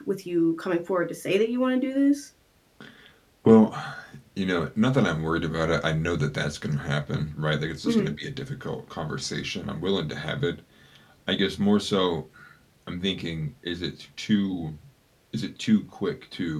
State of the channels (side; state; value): both; identical; correlation 1.00